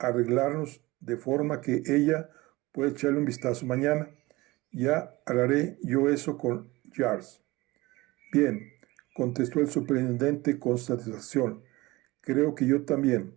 de forma que ella pueda echarle un vistazo mañana. Ya hablaré yo eso con Jars. Bien, contestó el superintendente con satisfacción. Creo que yo también.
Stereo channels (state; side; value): quieter; left; 20.9 dB